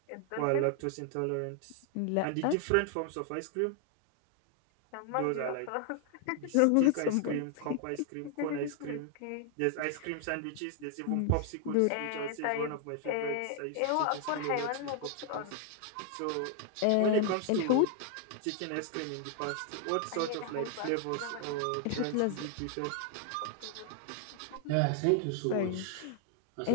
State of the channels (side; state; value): both; different; correlation 0.00